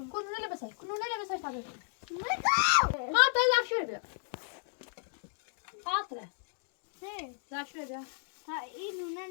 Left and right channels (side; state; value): right; silent; 55 dB below the other